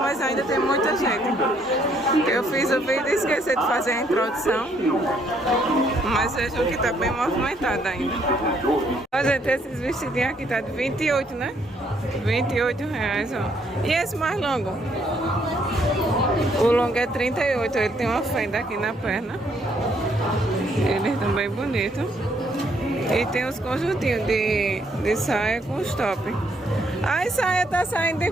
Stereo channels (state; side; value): normal; both; correlation 0.69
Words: ainda tem muita gente. Eu fiz o vídeo e esqueci de fazer a introdução. Mas vejam que está bem movimentada ainda. Ó, gente, esses vestidinhos aqui tá de 28, né? 28 reais, ó. E esse mais longo? O longo é 38, ele tem uma fenda aqui na perna. Eles estão bem bonitos. E tem os conjuntinhos de saia com os top. A saia tá saindo de